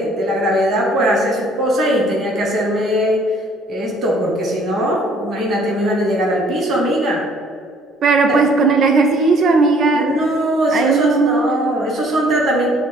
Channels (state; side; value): normal; both; correlation 0.59